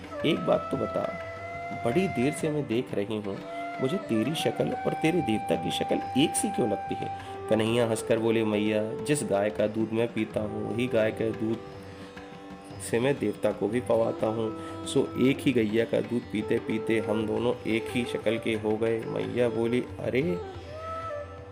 एक बात तो बता, बड़ी देर से मैं देख रही हूँ, मुझे तेरी शक्ल और तेरे देवता की शक्ल एक सी क्यों लगती है? कन्हैया हंसकर बोले, मैया जिस गाय का दूध मैं पीता हूँ, वही गाय के दूध से मैं देवता को भी पवाता हूँ, सो एक ही गैया का दूध पीते पीते हम दोनों एक ही शक्ल के हो गए। मैया बोली, अरे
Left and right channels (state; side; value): identical; both; correlation 1.00